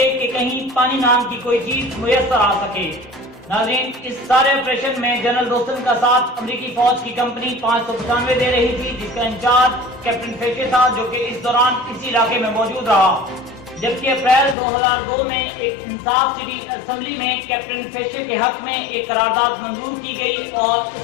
کہ کہیں پانی نام کی کوئی چیز میسر آ سکے۔ ناظرین، اس سارے آپریشن میں جنرل دوستم کا ساتھ امریکی فوج کی کمپنی 595 دے رہی تھی، جس کا انچارج کیپٹن فیشے تھا، جو کہ اس دوران اسی علاقے میں موجود رہا۔ جبکہ اپریل 2002 میں ایک انصاف سٹی اسمبلی میں کیپٹن فیشے کے حق میں ایک قرارداد منظور کی گئی اور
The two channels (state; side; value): drops out; right; at 14.6 s